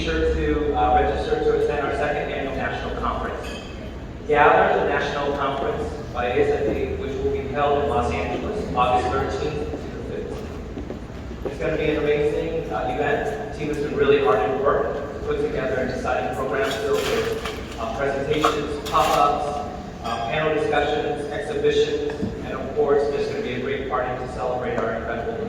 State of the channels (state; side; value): identical; both; correlation 1.00